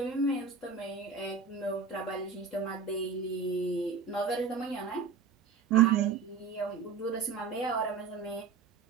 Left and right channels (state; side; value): quieter; left; 5.5 dB